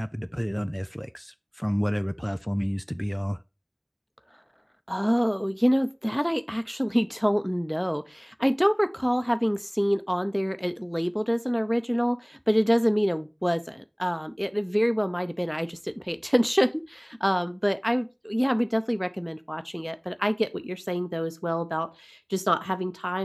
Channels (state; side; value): identical; both; correlation 1.00